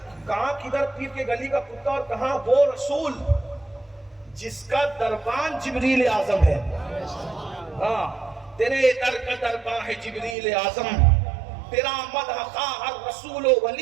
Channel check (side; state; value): left; drops out; at 10.4 s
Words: کہاں کدھر پیر کے گلی کا کتا اور کہاں وہ رسول جس کا دربان جبریل اعظم ہے. ہاں، تیرے در کا دربان ہے جبریل اعظم، تیرا مدح خواہ ہر رسول و